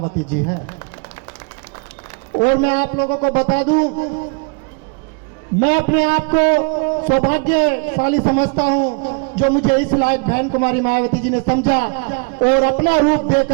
जी है। और मैं आप लोगों को बता दूं, मैं अपने आप को सौभाग्यशाली समझता हूं जो मुझे इस लायक बहन कुमारी मायावती जी ने समझा और अपना रूप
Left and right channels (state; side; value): quieter; left; 34.2 dB